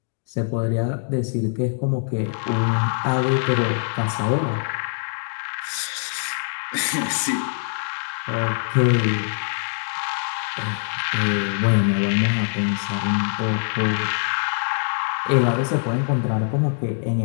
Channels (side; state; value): right; silent; 63 dB below the other